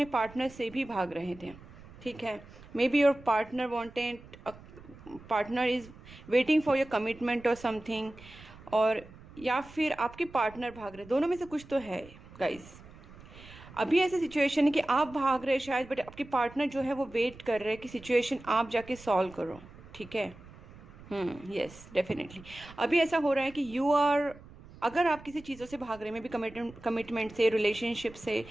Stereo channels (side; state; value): right; noise; rumble, 20 dB below the sound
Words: पार्टनर से भी भाग रहे थे। ठीक है, may be your partner wanted, partner is waiting for your commitment और समथिंग, और या फिर आपके पार्टनर भाग रहे, दोनों में से कुछ तो है गाइज। अभी ऐसी सिचुएशन है कि आप भाग रहे शायद, बट आपके पार्टनर जो है वो वेट कर रहे हैं कि सिचुएशन आप जाके सॉल्व करो। ठीक है, यस डेफिनेटली अभी ऐसा हो रहा है कि यू आर, अगर आप किसी चीज़ों से भाग रहे हैं, मे बी कमिटमेंट से, रिलेशनशिप से,